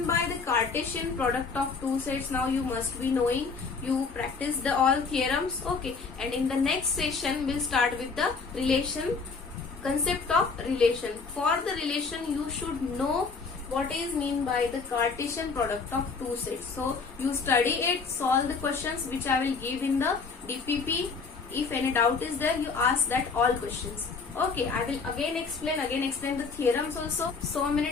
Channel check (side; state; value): right; quieter; 4.8 dB